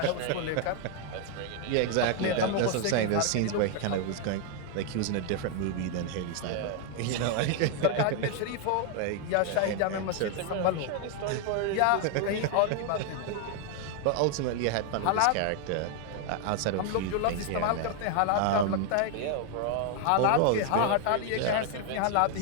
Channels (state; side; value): different; both; correlation 0.00